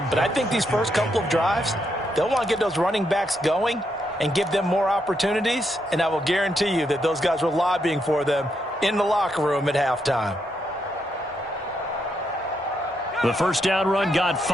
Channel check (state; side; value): normal; both; correlation 0.79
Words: but I think these first couple of drives, they'll want to get those running backs going and give them more opportunities, and I will guarantee you that those guys were lobbying for them in the locker room at halftime. The first down run got